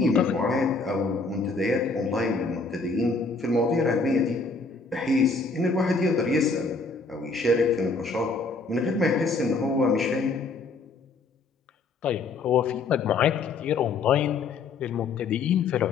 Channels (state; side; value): quieter; right; 4.0 dB